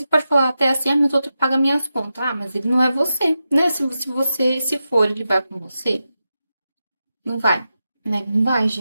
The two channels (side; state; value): both; inverted; correlation -0.90